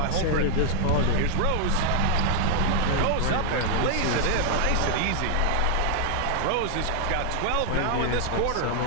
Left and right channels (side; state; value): both; different; correlation 0.00